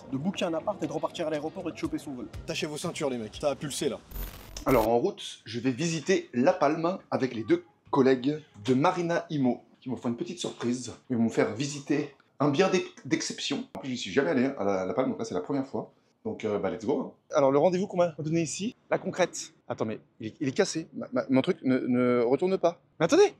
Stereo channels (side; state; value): both; identical; correlation 1.00